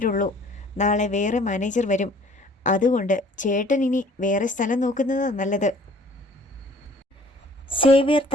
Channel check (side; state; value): both; normal; correlation 0.53